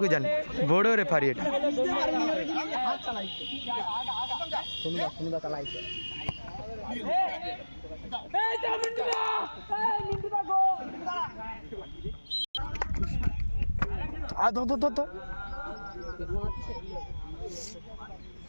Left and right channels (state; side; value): inverted; both; correlation -1.00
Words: জানিস? বড় রেফারি এটা। সুন্দর চালাইছে এই তো মিন্টু দা, এই মিন্টু দা গো আ তো